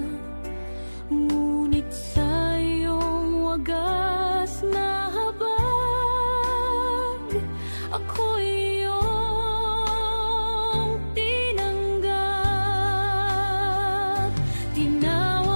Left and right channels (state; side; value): inverted; both; correlation -1.00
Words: ngunit sa iyong wagas na habag, ako'y iyong tinanggap.